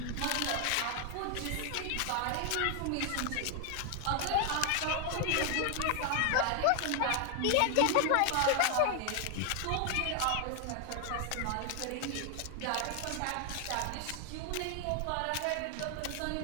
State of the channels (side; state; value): both; different; correlation 0.00